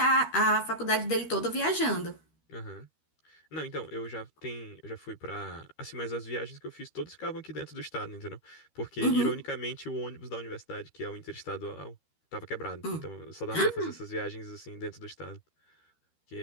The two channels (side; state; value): right; late; 13 ms